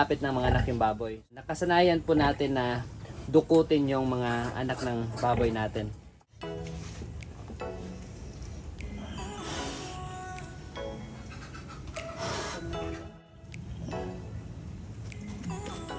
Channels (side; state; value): both; identical; correlation 1.00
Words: ng mga anak yung baboy. Nakasanayan po natin na dukutin yung mga anak ng baboy natin.